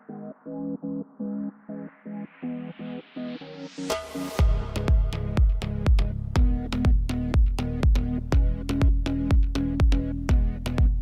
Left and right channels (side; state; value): both; identical; correlation 1.00